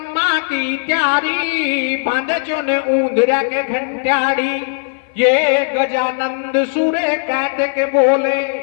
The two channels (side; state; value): right; silent; 59 dB below the other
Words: की त्यारी। बांधे चो ने ऊंदरा के घंटियाड़ी, ये गजानंद सुरे कार्तिक बोले।